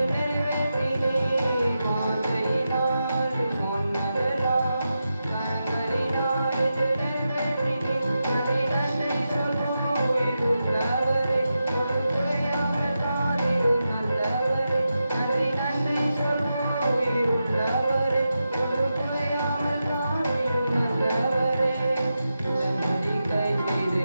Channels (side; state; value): both; inverted; correlation -0.89